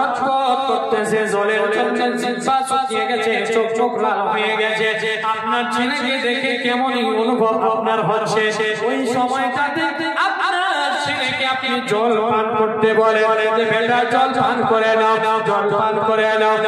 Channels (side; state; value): both; identical; correlation 1.00